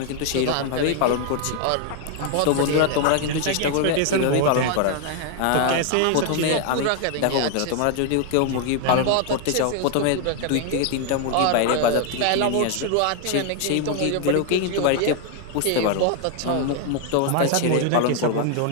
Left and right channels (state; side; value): different; both; correlation 0.00